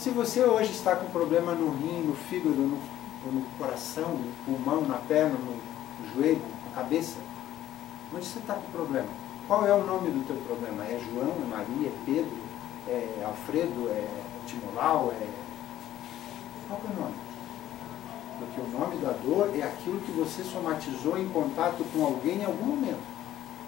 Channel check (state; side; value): quieter; right; 12.8 dB